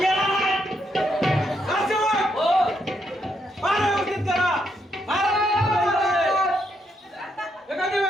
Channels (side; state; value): both; normal; correlation 0.77